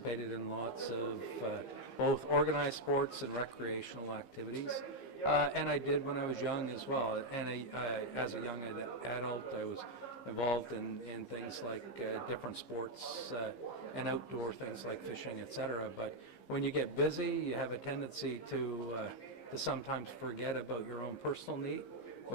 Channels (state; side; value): late; right; 15 ms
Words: in lots of both organized sports and recreational activities. And I did when I was young as well. And as a young adult, I was involved in things like different sports and outdoor things like fishing, etc. But when you get busy, you have a tendency to sometimes forget about your own personal need,